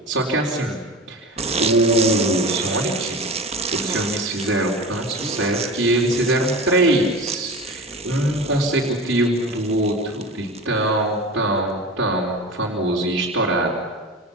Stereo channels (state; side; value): normal; both; correlation 0.33